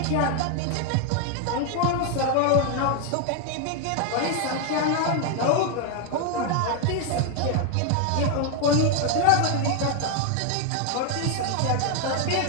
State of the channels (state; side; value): different; both; correlation 0.01